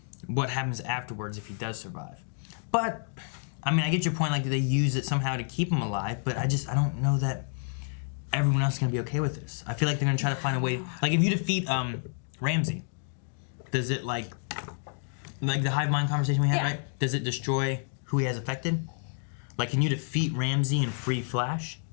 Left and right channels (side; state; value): right; silent; 58 dB below the other